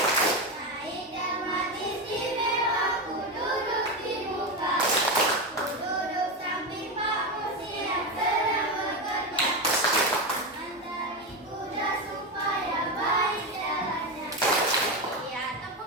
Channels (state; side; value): normal; both; correlation 0.14